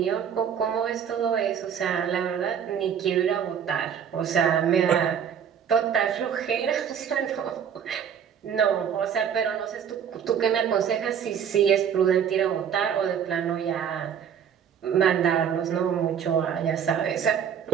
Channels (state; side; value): quieter; left; 8.1 dB